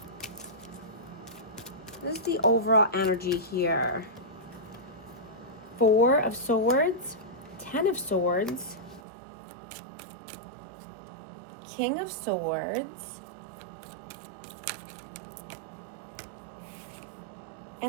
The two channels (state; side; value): drops out; left; at 9.0 s